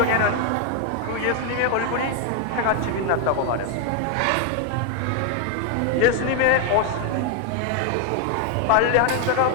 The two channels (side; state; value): both; different; correlation 0.01